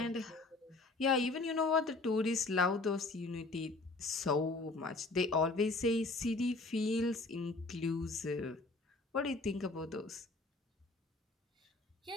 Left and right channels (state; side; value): quieter; right; 3.3 dB